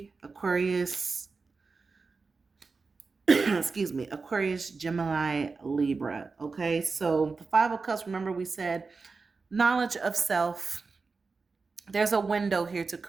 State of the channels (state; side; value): quieter; left; 4.4 dB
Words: Aquarius, excuse me, Aquarius, Gemini, Libra. Okay, so the Five of Cups, remember we said knowledge of self. There's a window here to